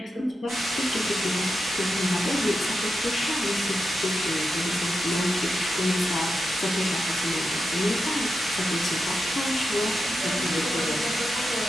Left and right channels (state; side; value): normal; both; correlation 0.88